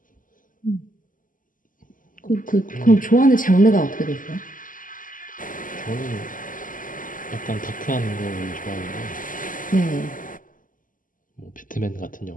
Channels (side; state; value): right; late; 0.39 ms